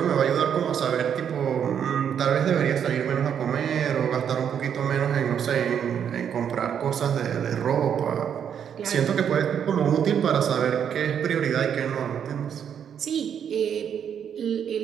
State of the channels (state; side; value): quieter; left; 8.3 dB